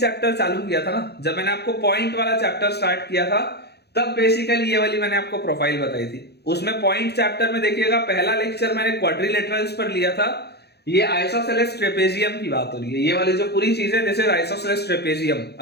चालू किया था ना, जब मैंने आपको पॉइंट वाला चैप्टर स्टार्ट किया था तब बेसिकली ये वाली मैंने आपको प्रोफाइल बताई थी। उसमें पॉइंट चैप्टर में देखिएगा पहला लेक्चर मैंने क्वाड्रिलेटरल्स पर लिया था। ये आइसोसेलेस ट्रेपेजियम की बात हो रही है, ये वाली जो पूरी चीज है दिस इज आइसोसेलेस ट्रेपेजियम।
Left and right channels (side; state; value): right; late; 0.48 ms